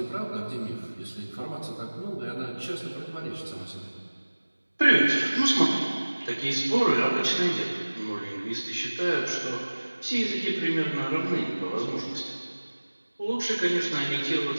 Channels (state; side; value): inverted; both; correlation -1.00